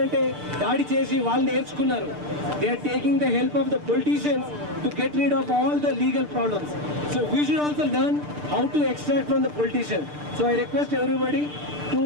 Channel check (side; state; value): left; late; 6.7 ms